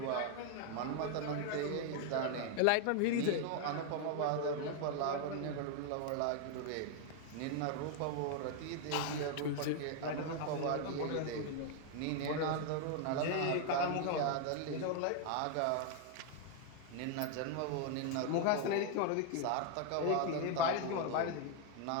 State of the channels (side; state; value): both; different; correlation 0.00